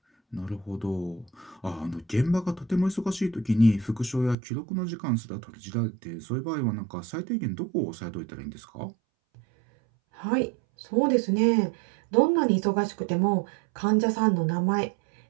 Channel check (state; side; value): drops out; left; at 4.4 s